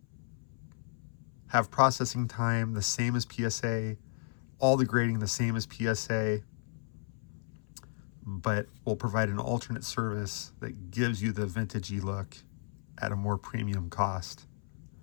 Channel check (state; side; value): silent; right; 55 dB below the other